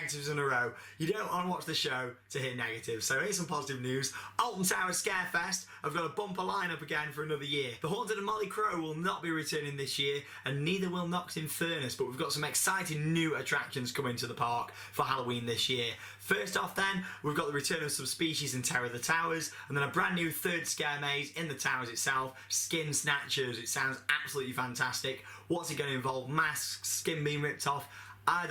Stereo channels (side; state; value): both; identical; correlation 1.00